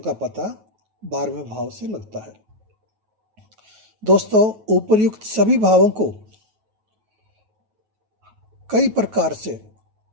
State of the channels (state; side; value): late; left; 9.3 ms